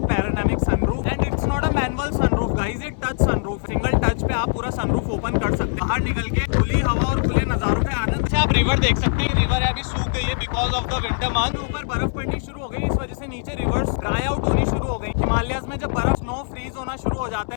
पैराडायनामिक sunroof. And it's not a manual sunroof guys, it touch sunroof. Single touch पे आप पूरा सनरूफ ओपन कर सकते हैं, बाहर निकल के खुली हवा और खुले नजारों के आनंद से आप रिवर देख सकते हैं। रिवर अभी सूख गई है because of the winter month. ऊपर बर्फ पड़नी शुरू हो गई, इस वजह से नीचे रिवर्स ड्राई आउट होनी शुरू हो गई। हिमालयाज में जब बर्फ स्नो फ्रीज होना शुरू हो जाता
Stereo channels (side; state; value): right; silent; 64 dB below the other